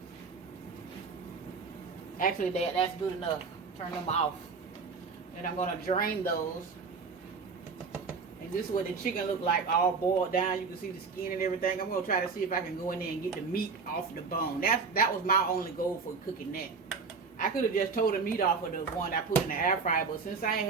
Actually, that's good enough. Turn them off. And I'm gonna drain those. And this is what the chicken look like, all boiled down. You can see the skin and everything. I'm gonna try to see if I can go in there and get the meat off the bone. That was my only goal for cooking that. I could have just tore the meat off of the one I put in the air fryer, but since I ain't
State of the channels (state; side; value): quieter; left; 4.9 dB